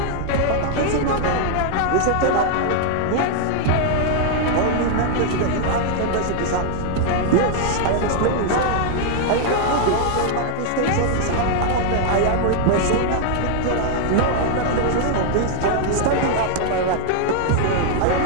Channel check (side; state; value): both; different; correlation 0.00